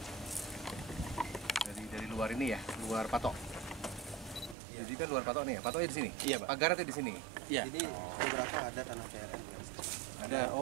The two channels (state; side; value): drops out; left; at 4.5 s